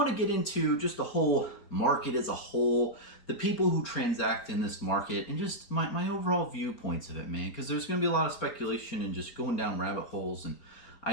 to get into just the whole market as a whole, the people who transact in this market, and just my overall viewpoints of it, man, because there's going to be a lot of speculation and just going down rabbit holes, and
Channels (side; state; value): right; late; 4.4 ms